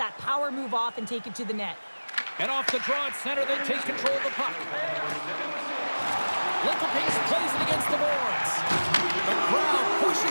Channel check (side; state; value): both; inverted; correlation -1.00